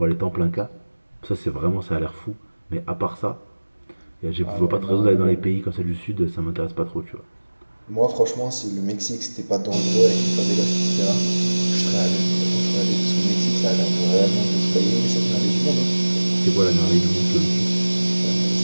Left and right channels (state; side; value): inverted; both; correlation -1.00